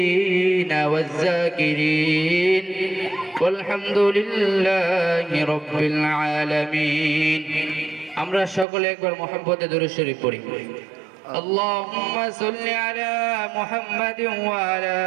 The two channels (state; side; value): drops out; left; at 8.7 s